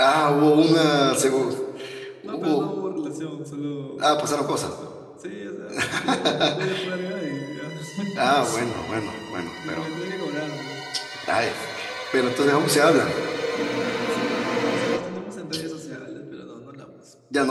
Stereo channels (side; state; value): both; identical; correlation 1.00